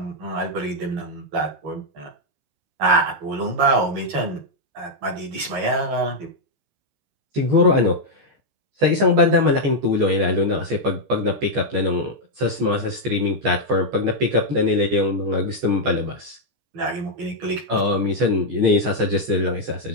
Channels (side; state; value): left; late; 14 ms